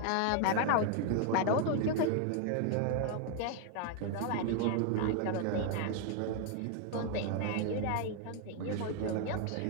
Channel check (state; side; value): different; both; correlation 0.00